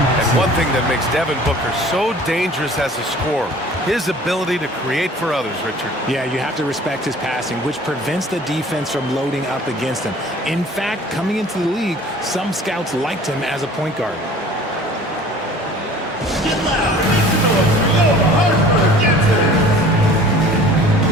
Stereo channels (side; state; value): both; normal; correlation 0.47